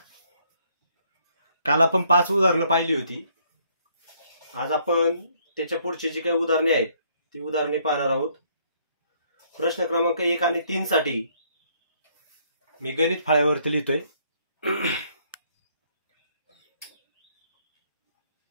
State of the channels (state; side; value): inverted; both; correlation -0.67